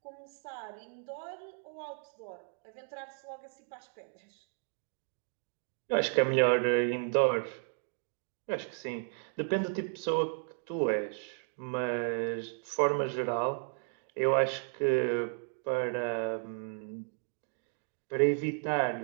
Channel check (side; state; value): left; silent; 55 dB below the other